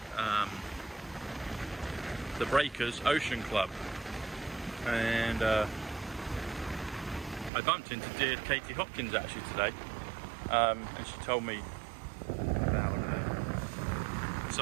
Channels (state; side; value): drops out; left; at 7.5 s